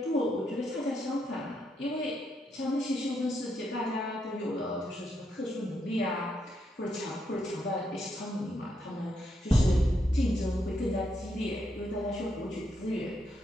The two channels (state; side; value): normal; both; correlation 0.80